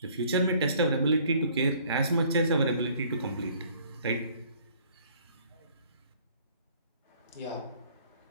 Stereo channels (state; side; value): inverted; both; correlation -0.58